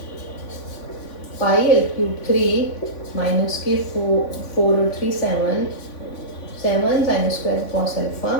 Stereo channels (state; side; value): late; right; 3.5 ms